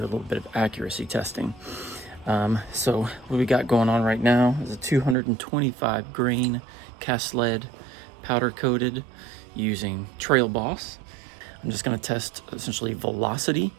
bit of accuracy testing. So what we got going on right now is a 225 grain cast lead powder coated using Trailboss. I'm just going to test essentially velocity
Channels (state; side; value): drops out; left; at 5.2 s